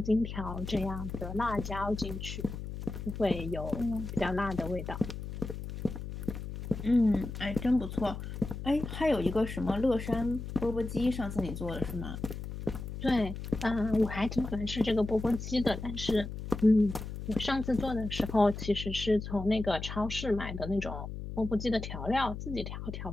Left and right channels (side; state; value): left; noise; hum, 8 dB below the sound